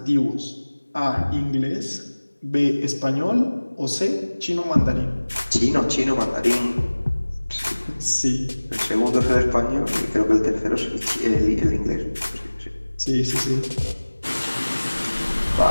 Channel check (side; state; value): both; inverted; correlation -1.00